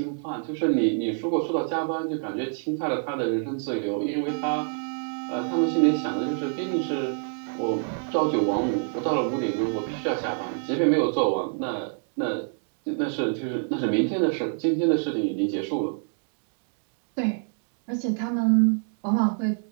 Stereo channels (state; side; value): silent; left; 60 dB below the other